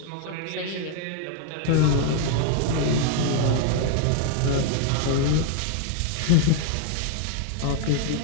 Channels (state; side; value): different; both; correlation 0.00